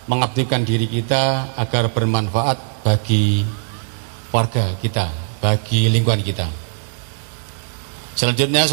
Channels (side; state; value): left; silent; digital silence